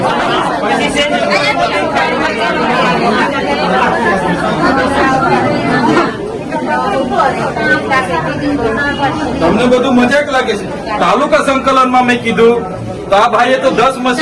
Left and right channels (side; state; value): both; identical; correlation 1.00